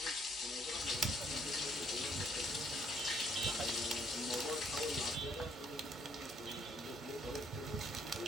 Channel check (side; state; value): both; normal; correlation 0.68